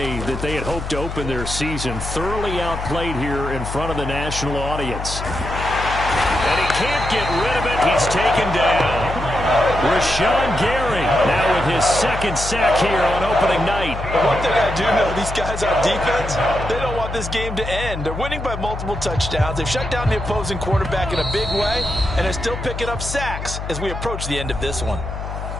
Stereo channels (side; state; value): left; noise; hum, 7 dB below the sound